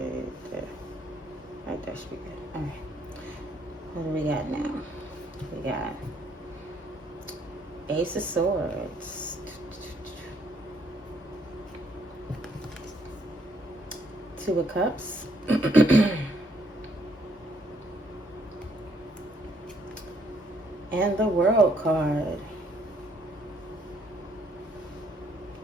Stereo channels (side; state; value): both; normal; correlation 0.68